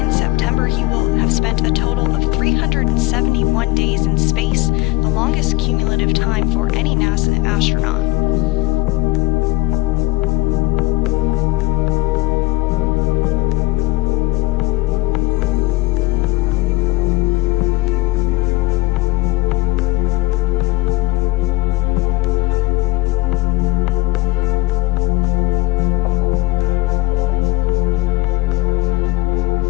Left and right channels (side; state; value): right; quieter; 19.5 dB